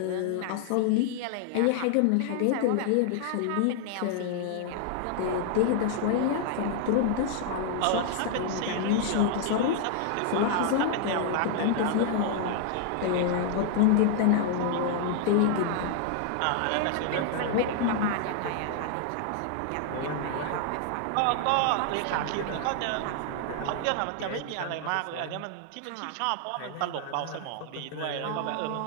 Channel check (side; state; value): both; different; correlation 0.00